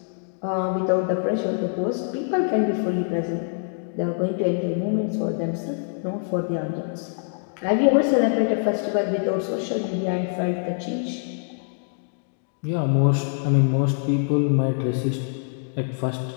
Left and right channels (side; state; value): right; silent; digital silence